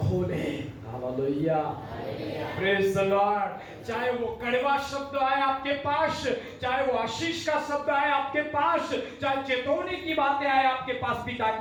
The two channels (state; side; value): identical; both; correlation 1.00